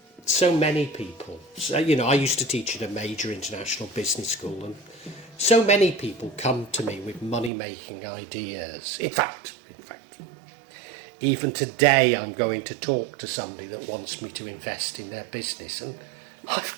So many people, you know, I used to teach at a major international business school, and so many people come to me with money-making ideas. In fact, even today I'm going to talk to somebody that wants me to invest in their business, and I've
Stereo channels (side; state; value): left; drops out; at 7.5 s